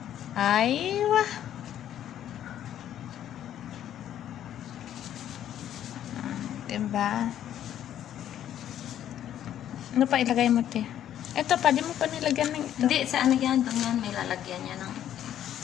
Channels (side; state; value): right; quieter; 10.9 dB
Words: Ay, wah. Diba? Ano pa ilagay mo, te? Ito pa, di mo pa nilagyan ng ito. Hindi, sa ano yan, doon yan, may lalagyan yan ng...